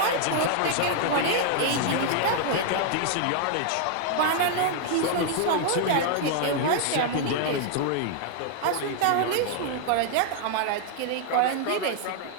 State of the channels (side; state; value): both; different; correlation 0.00